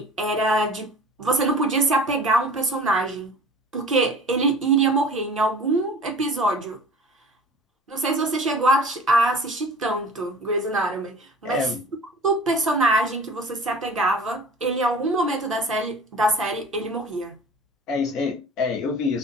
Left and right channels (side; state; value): both; normal; correlation 0.43